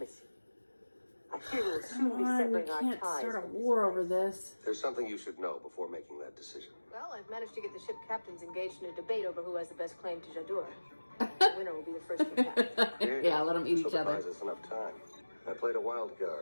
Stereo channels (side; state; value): both; inverted; correlation -1.00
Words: I fear we will soon Come be on, we severing our can't ties. start a with this war place. over this. there's something you should know before making that decision. Well, I've managed to get the ship captains engaged in a debate over who has the best claim to Jadur. The winner will be the first to attack. Yeah, let them eat each So other. buys us enough time. I played a wild